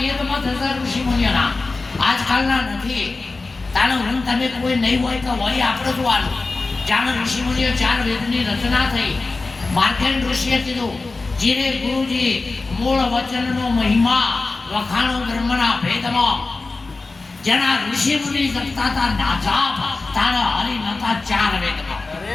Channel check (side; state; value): right; quieter; 3.6 dB